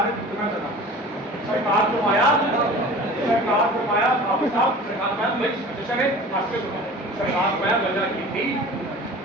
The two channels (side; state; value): both; normal; correlation 0.41